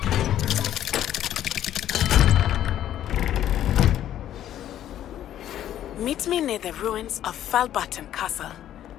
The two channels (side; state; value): right; quieter; 11.6 dB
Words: Meet me near the ruins of Falbutton Castle.